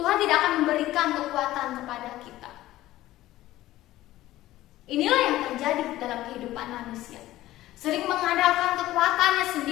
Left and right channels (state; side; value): quieter; right; 15.6 dB